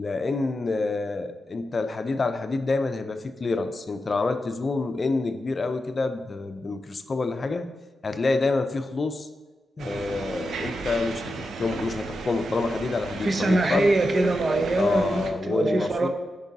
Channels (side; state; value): both; normal; correlation 0.88